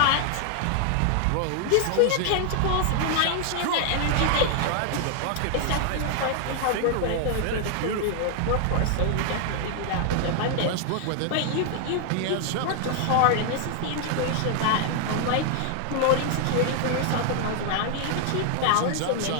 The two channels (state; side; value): different; both; correlation 0.00